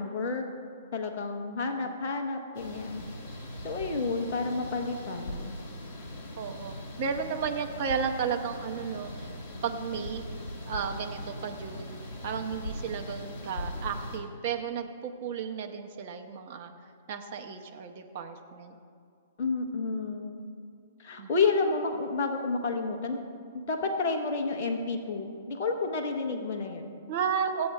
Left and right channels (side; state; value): both; inverted; correlation -0.47